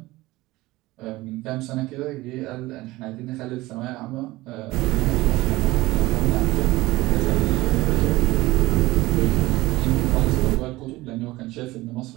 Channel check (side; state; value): left; quieter; 19.3 dB